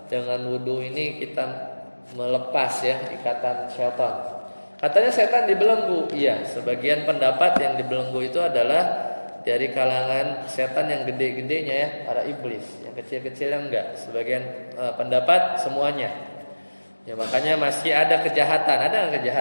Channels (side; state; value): both; inverted; correlation -1.00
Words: Dengan wudu ini kita melepas ya ikatan syaitan. Katanya setan dibelenggu. Iya, sebagian pendapat yang dibelenggu itu adalah dari kalangan setan yang gede-gedenya ya, para iblis. Yang kecil-kecilnya enggak. Sebagian pendapat semuanya. Ya makanya masih ada kejahatan. Ada nggak